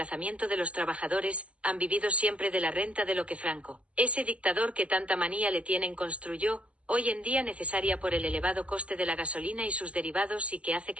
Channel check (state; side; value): late; left; 0.061 ms